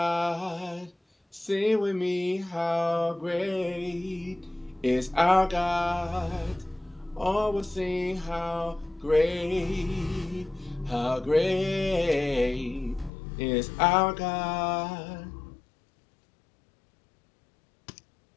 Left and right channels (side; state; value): right; drops out; at 13.1 s